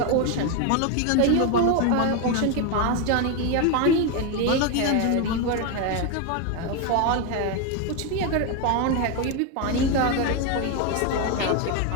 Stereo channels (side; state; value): both; different; correlation 0.02